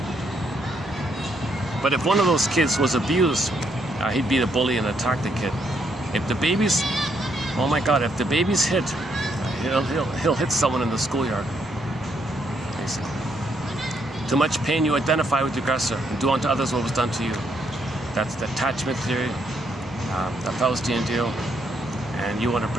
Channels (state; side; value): normal; both; correlation 0.74